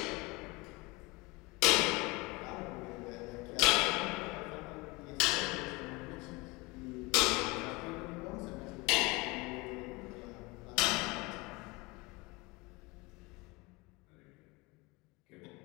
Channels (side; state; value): right; quieter; 24.5 dB